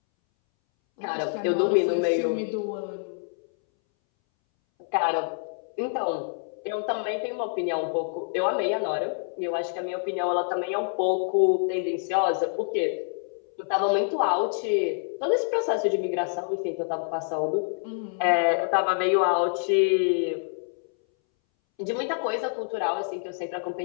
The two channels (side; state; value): right; silent; 60 dB below the other